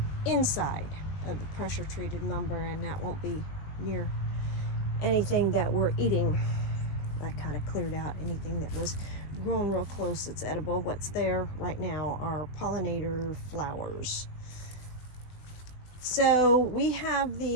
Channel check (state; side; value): late; right; 20 ms